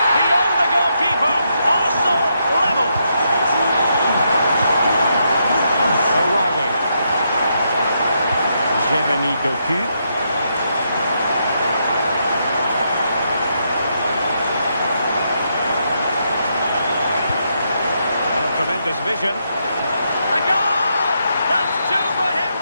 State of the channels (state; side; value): inverted; both; correlation -0.79